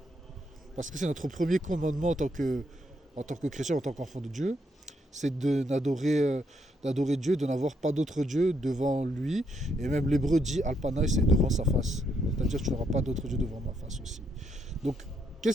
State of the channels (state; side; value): normal; both; correlation 0.76